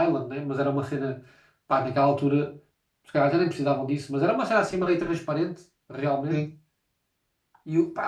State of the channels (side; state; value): both; identical; correlation 1.00